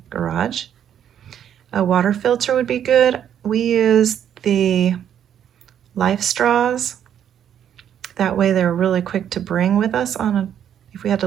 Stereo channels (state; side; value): quieter; left; 9.5 dB